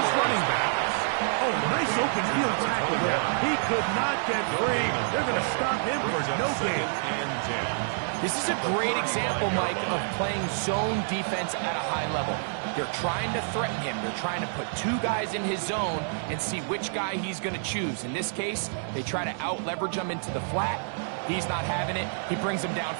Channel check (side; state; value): left; silent; digital silence